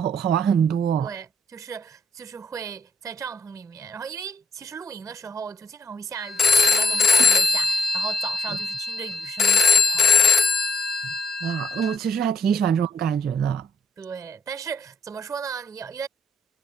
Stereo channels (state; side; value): normal; both; correlation 0.69